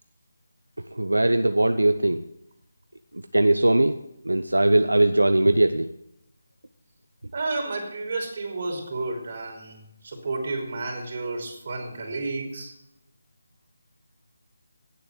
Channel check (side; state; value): both; inverted; correlation -0.98